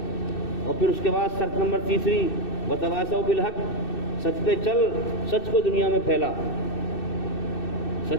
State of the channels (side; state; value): right; late; 2.6 ms